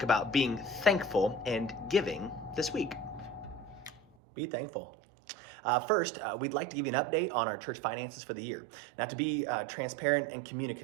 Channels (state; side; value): drops out; left; at 4.0 s